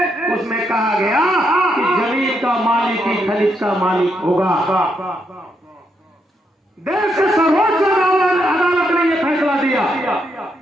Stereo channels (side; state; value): both; normal; correlation 0.79